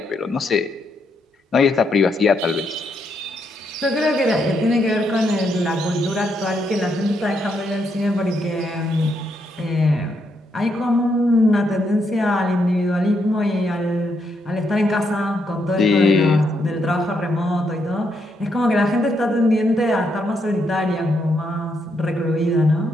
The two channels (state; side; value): normal; both; correlation 0.78